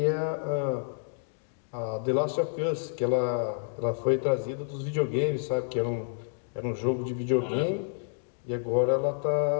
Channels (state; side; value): silent; right; digital silence